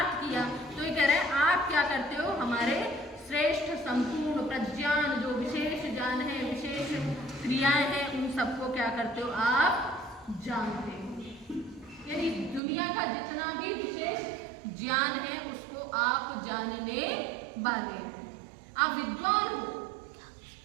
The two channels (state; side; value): drops out; left; at 12.6 s